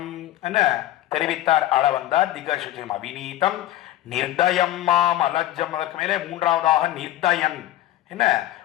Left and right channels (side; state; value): right; quieter; 14.3 dB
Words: என்ன தெரிவித்தார் ஆள வந்தார் திகசுஜம். அவிநீதம் நிர்தயம் மாம் அலஜம். அதற்கு மேலே மூன்றாவதாக நிர்தயன், என்ன